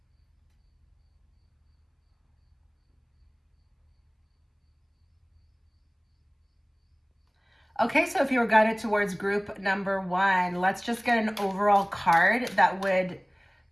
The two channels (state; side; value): identical; both; correlation 1.00